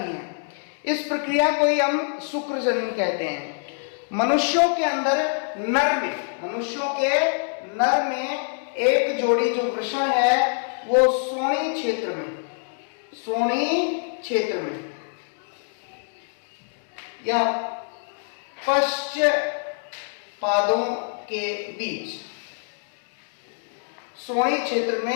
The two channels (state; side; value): silent; right; 58 dB below the other